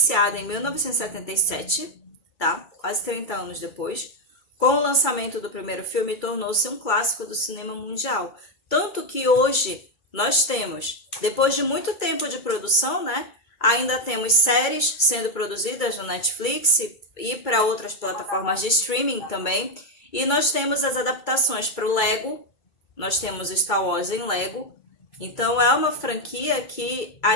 em 1977, tá? Quase 30 anos depois, com o lançamento do primeiro filme, tornou-se um clássico do cinema mundial. Tanto que hoje nós temos, depois de muito tempo de produção, né? Ainda temos séries sendo produzidas no Netflix e para outras plataformas de streaming também. E nós temos as adaptações para o Lego. Nós temos Star Wars em Lego. Então é uma franquia que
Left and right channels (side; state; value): right; late; 2.3 ms